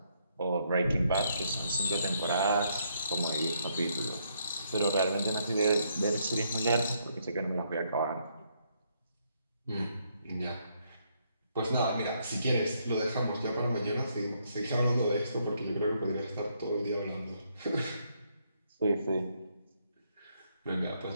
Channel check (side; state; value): both; inverted; correlation -0.74